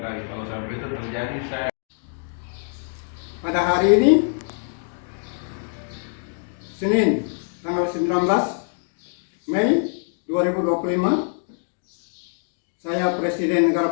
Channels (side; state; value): right; silent; 63 dB below the other